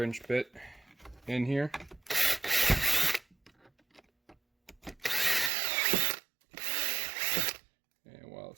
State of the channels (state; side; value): drops out; left; at 5.5 s